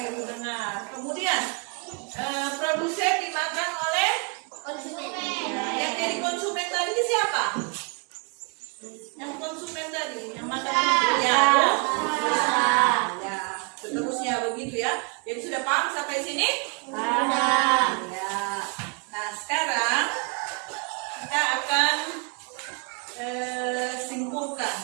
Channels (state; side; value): quieter; left; 34.3 dB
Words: lu dengar. Kemudian produsen dimakan oleh yang jadi konsumen tadi siapa? Yang konsumen tadi, yang makan ya, ya, seterusnya begitu ya. Jadi sudah paham sampai sini? Paham. Ya. Nah sekarang kita akan